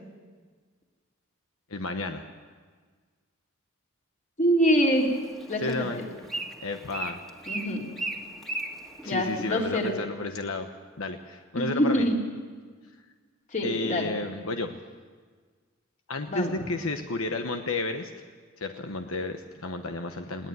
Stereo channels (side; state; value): both; normal; correlation 0.35